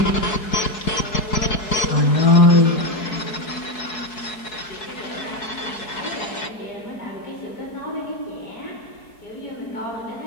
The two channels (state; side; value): late; right; 4.7 ms